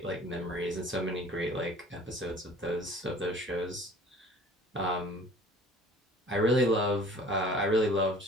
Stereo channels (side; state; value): both; normal; correlation 0.49